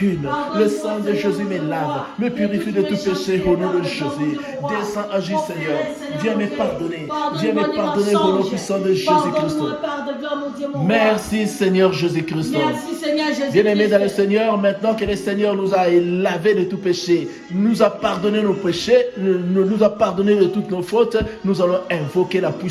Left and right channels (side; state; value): both; identical; correlation 1.00